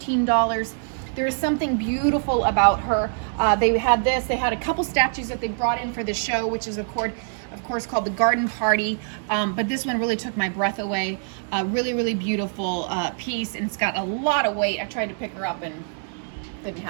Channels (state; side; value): silent; left; 60 dB below the other